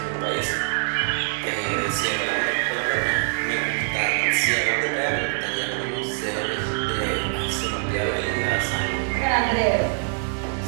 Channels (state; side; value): silent; left; 63 dB below the other